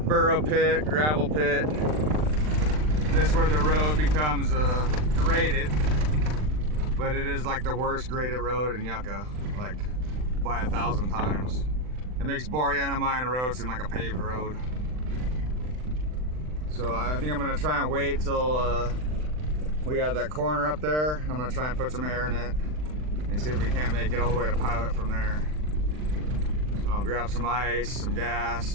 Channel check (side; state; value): left; late; 39 ms